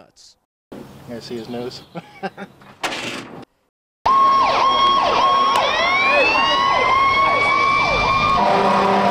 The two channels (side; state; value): both; identical; correlation 1.00